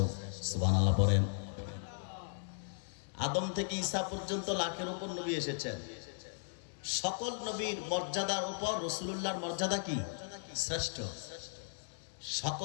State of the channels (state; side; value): silent; right; digital silence